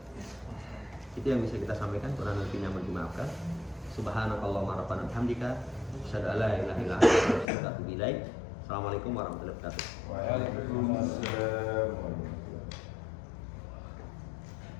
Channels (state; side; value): drops out; right; at 7.5 s